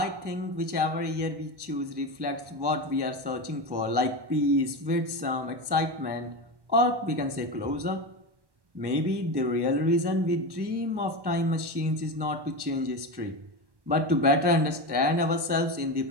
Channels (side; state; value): left; late; 1.1 ms